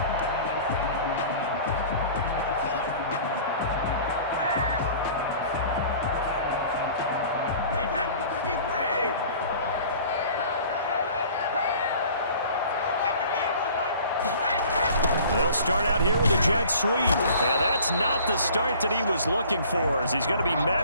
They'll start out here with a jet sweep. And that's not the start that he was looking for, as he's going to be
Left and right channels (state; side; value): inverted; both; correlation -0.47